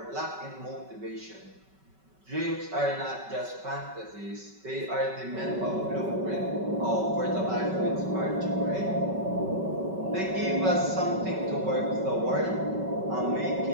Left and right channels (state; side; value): late; left; 5.3 ms